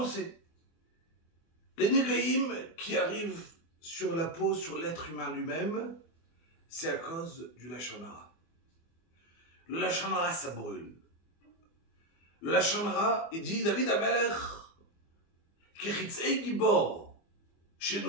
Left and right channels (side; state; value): right; late; 24 ms